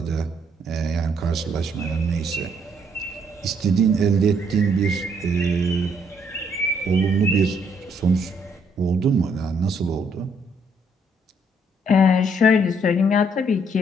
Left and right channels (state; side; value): normal; both; correlation 0.69